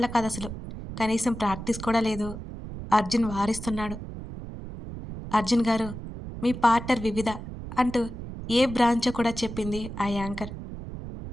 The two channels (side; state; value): right; noise; rumble, 10 dB below the sound